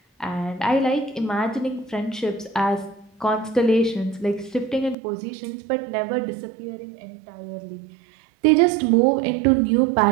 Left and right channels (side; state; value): left; drops out; at 5.0 s